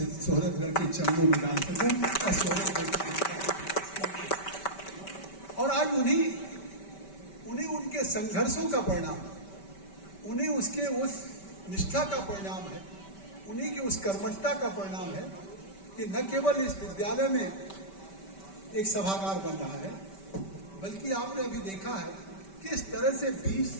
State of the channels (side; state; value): right; late; 5.2 ms